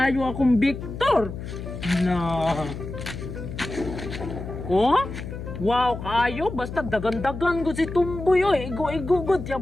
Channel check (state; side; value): noise; left; hum, 9 dB below the sound